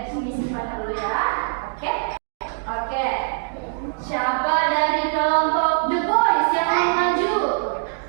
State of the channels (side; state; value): left; silent; digital silence